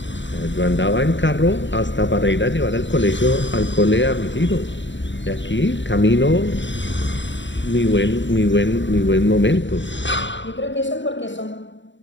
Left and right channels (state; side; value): late; right; 0.54 ms